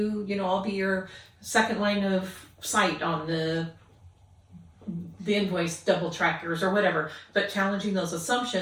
I'll be your second line of sight on the invoice double trackers or whatever, but challenging those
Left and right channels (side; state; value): both; identical; correlation 1.00